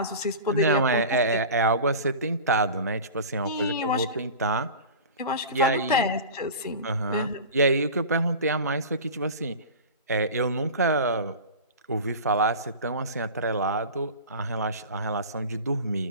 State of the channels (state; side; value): inverted; both; correlation -0.33